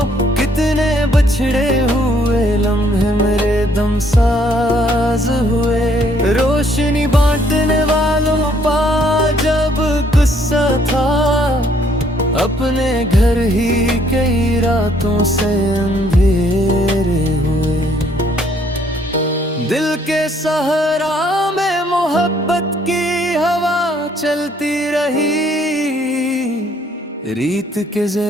कितने बिछड़े हुए लम्हे मेरे दम साज हुए। रोशनी बांटने वालों पा जब गुस्सा था, अपने घर ही कई रातों से अंधेरे हुए। दिल के सहरा में मोहब्बत की हवा चलती रही, रीत के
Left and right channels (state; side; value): normal; both; correlation 0.65